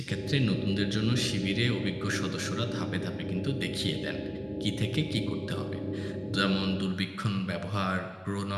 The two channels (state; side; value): identical; both; correlation 1.00